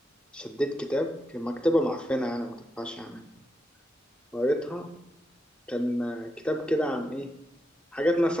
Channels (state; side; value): normal; both; correlation 0.85